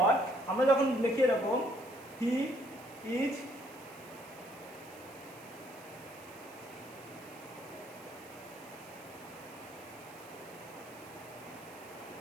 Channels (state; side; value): noise; right; hiss, 21 dB below the sound